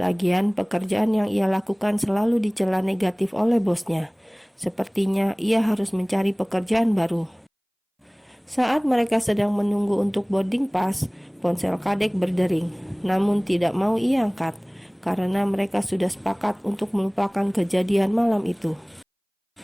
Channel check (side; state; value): both; identical; correlation 1.00